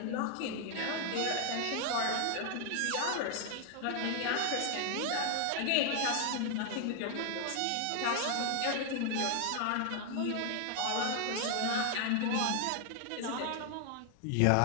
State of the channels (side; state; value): both; different; correlation 0.00